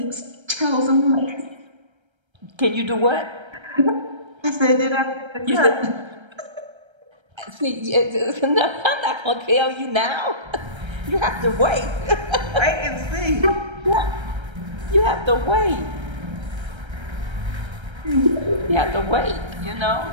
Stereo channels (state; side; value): late; left; 1.3 ms